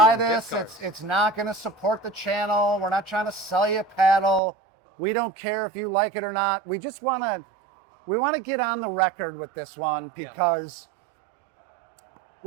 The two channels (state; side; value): drops out; left; at 4.4 s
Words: gift this, cards. it's not going to support the channel. We're not trying to sell you a paddle. We don't care if you like it or not. We just want to get on the record with this one because,